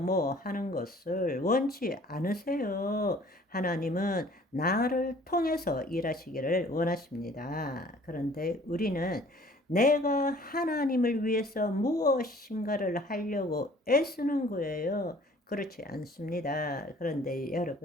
하는 것을 원치 않으세요. 하나님은 나를 통해서 일하시기를 원하십니다. 그런데 우리는 내가 하나님을 위해서 무엇인가를 하려고 애쓰는 거예요. 그렇지 않습니다. 그런데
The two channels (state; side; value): normal; both; correlation 0.53